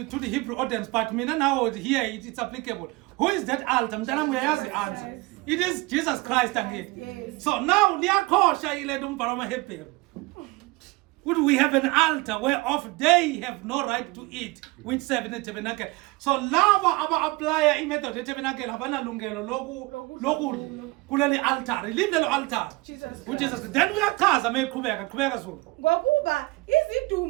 Hebrew audience, but mina now here it's applicable. Who is that altar? Mntana uyayazi the answer. It is Jesus Christ again. Yes. So now liyakhosha ile umbhalo wamaHebrew. Would we have an altar whereof they have no right to eat, which serve in the tabernacle? So lava aba-applya i-method ye-tabernacle abanalungelo lokudla kuleli altar. Leave lelo altar. Jesus Which is then uyachaza mayiqhubeka Zulu. Ngokuba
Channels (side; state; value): left; quieter; 23.2 dB